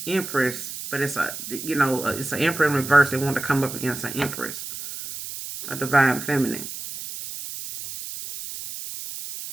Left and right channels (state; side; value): noise; right; hiss, 9 dB below the sound